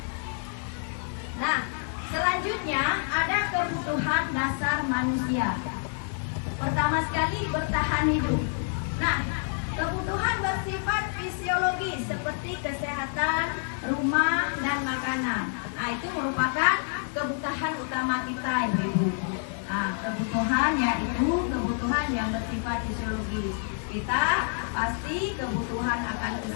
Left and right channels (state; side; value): silent; right; 59 dB below the other